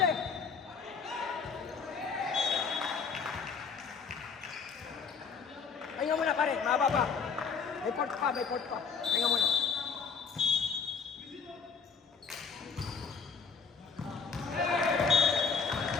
Pahinga muna pare, mahaba pa. May port pa. Pahinga muna.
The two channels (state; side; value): quieter; right; 5.6 dB